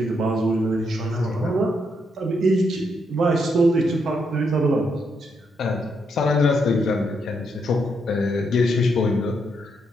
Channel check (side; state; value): both; normal; correlation 0.78